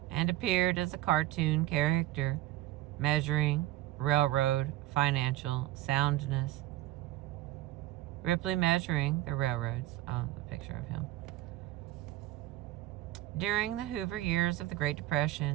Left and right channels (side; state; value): left; quieter; 15.7 dB